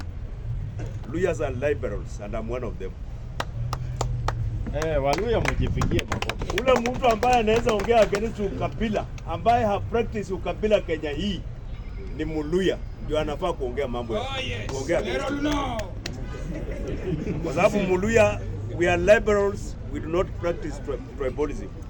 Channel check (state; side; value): identical; both; correlation 1.00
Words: Luyas are liberals, and I'm one of them. Waluya mjipigie makofi. Ule mtu ambaye anaweza ongea against ukabila, ambaye ha practice ukabila Kenya hii ni Muluya, ndio anafaa kuongea mambo ya kuongea. Kwa sababu Muluya, we are liberals, we do not practice tribalism.